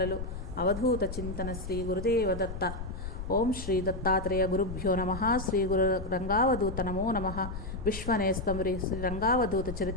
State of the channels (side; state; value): left; noise; rumble, 8 dB below the sound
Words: అవధూత చింతన శ్రీ గురుదేవదత్త. ఓం శ్రీ దత్తాత్రేయ గురుభ్యో నమః. శ్రీ గురు రంగావధూత నమో నమః. విశ్వనేస్తం శ్రీ రంగావధూత